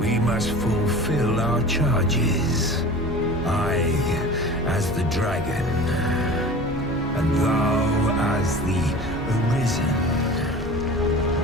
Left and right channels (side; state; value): both; normal; correlation 0.38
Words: must fulfill our charges. I as the dragon, and thou as the Arisen.